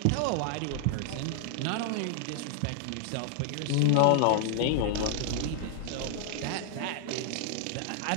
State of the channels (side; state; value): both; different; correlation 0.00